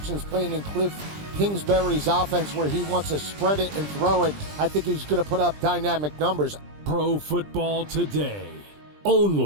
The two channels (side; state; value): left; late; 20 ms